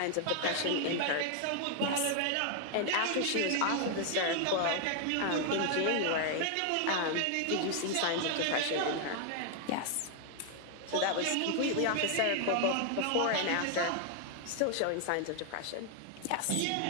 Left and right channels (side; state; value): both; different; correlation 0.00